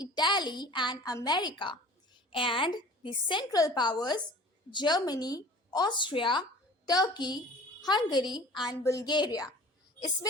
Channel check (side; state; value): both; normal; correlation 0.44